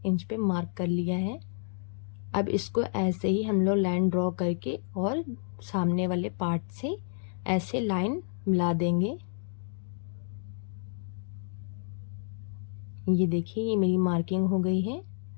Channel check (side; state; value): right; silent; digital silence